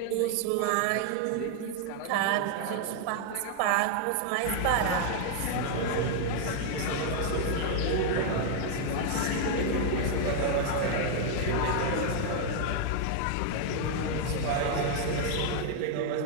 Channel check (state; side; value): different; both; correlation 0.00